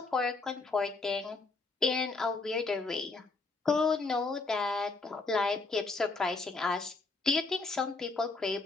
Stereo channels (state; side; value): quieter; right; 3.7 dB